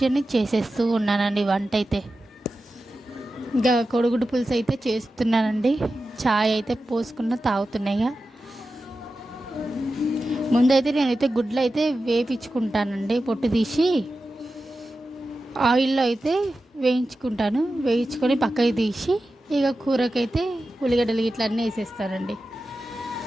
చేసేస్తూ ఉన్నానండి వంట అయితే. ఇక కొడుగుడ్డు పులుసు అయితే చేస్తున్నానండి. చాయ్ అయితే పోసుకున్న తాగుతున్నాయిగా. ముందైతే నేనైతే గుడ్లు అయితే వేయించుకుంటానండి. పొట్టు తీసి ఆయిల్లో అయితే వేయించుకుంటాను. వేయించుకొని పక్కకి తీసి ఇక కూరకైతే ఉల్లిగడ్డలు ఇట్లా అన్నీ వేసేస్తానండి.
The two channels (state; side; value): normal; both; correlation 0.93